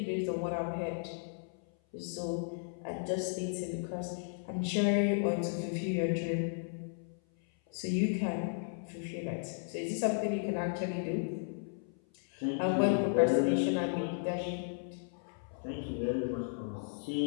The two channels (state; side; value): silent; right; 55 dB below the other